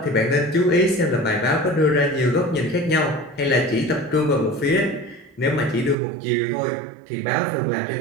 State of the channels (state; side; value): drops out; left; at 6.0 s